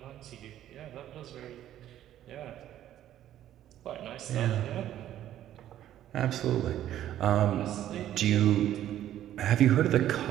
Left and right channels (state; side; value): quieter; left; 12.1 dB